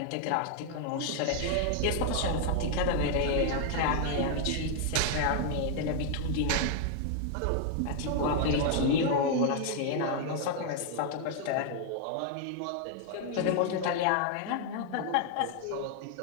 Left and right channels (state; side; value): different; both; correlation 0.00